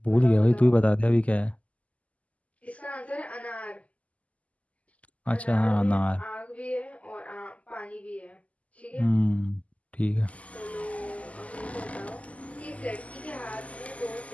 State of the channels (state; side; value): late; right; 0.069 ms